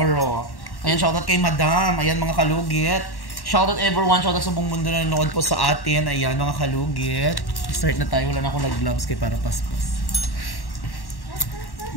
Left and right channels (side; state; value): right; late; 1.1 ms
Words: Ayan, shoutout kay Madam. Ayan mga kalugit. Shoutout everyone, shoutout sa buong mundo na nanonood po sa atin. Ayan mga kalugit. Start na tayo, wala na akong nag-gloves kay para paspas.